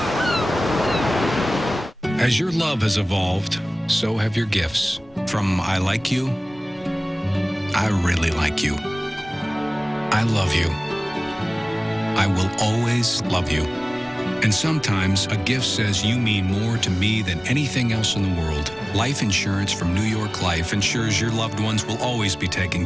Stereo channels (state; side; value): normal; both; correlation 0.98